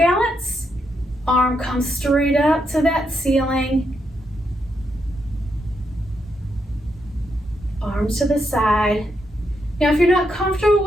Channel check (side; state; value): both; normal; correlation 0.81